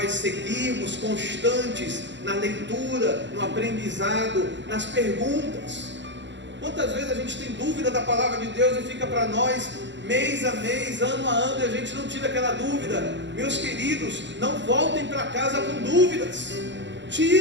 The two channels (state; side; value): late; left; 0.53 ms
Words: seguirmos constantes na leitura, no aprendizado, nas perguntas. Quantas vezes a gente tem dúvida da palavra de Deus e fica para nós mês a mês, ano a ano, e a gente não tira aquela dúvida? Meus queridos, não voltem para casa com dúvidas,